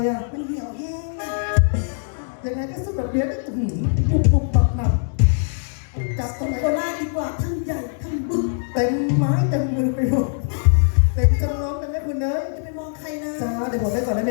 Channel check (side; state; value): right; silent; digital silence